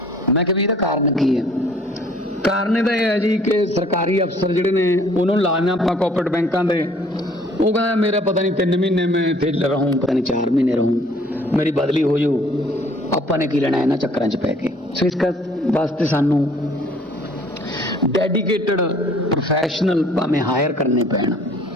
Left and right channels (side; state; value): both; normal; correlation 0.57